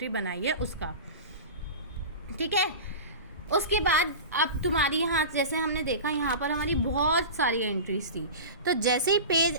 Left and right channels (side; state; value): both; inverted; correlation -0.31